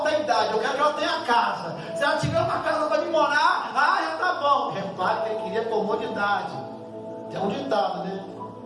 a idade, eu quero que ela tenha casa. Se ela tiver uma casa para me morar, já tá bom. Repare que ele queria comodidade. Tem um ditado, né?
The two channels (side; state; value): both; identical; correlation 1.00